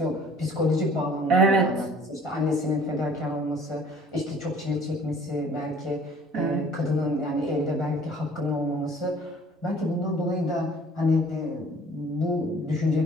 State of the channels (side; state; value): both; normal; correlation 0.53